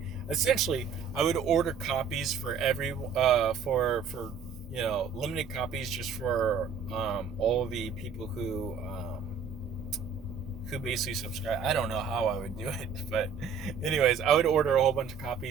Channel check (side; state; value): left; quieter; 6.3 dB